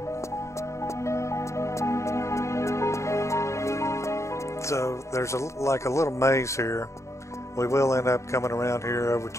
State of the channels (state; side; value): late; right; 0.14 ms